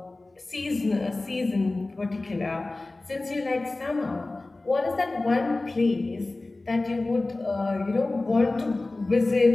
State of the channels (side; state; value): right; quieter; 3.1 dB